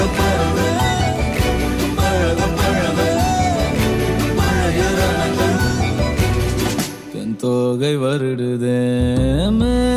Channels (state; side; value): identical; both; correlation 1.00